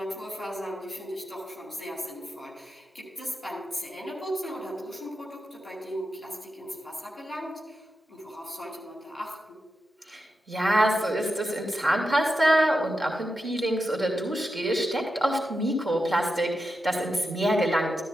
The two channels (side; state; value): both; normal; correlation 0.88